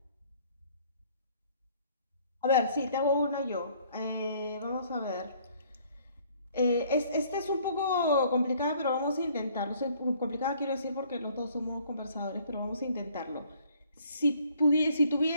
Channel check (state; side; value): inverted; both; correlation -0.60